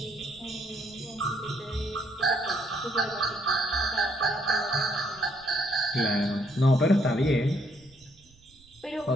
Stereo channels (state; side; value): noise; right; rumble, 28 dB below the sound